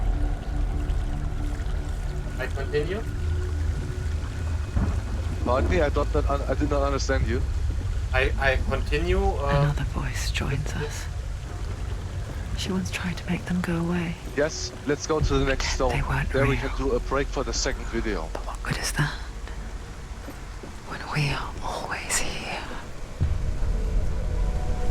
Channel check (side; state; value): both; identical; correlation 1.00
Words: I continue. Pardon me, I did not understand you. I continue. Another voice joins us. She once tried to make them go away. Yes, let's go to the next stone. They weren't There we real. can do a break for the second video. But what good is that? When we are always here.